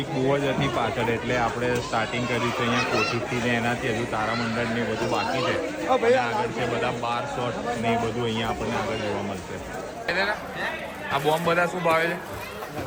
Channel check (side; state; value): both; identical; correlation 1.00